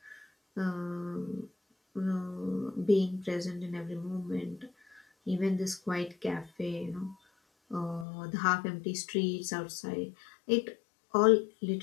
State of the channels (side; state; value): right; drops out; at 8.1 s